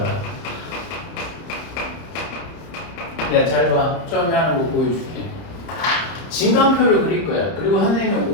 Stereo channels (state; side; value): late; right; 30 ms